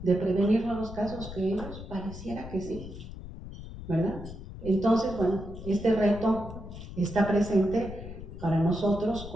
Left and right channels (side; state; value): left; noise; rumble, 12 dB below the sound